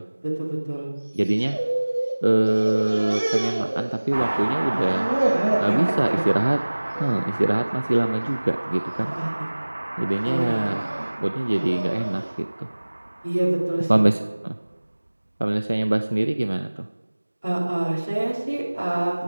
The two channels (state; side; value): inverted; both; correlation -1.00